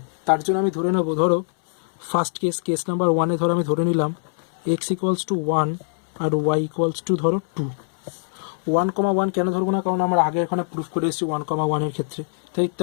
তার জন্য আমি ধরে নেবো, ধরো ফার্স্ট কেস নাম্বার 1-এ ধরো আমি ধরে নিলাম x ইকুয়ালস টু 1 আর y ইকুয়ালস টু ধরো 2। 1,1 কেন ধরবো না, কারণ আমরা আগে এখানে প্রুফ করে এসেছি 1,1-এর ক্ষেত্রে,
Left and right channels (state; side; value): silent; right; 64 dB below the other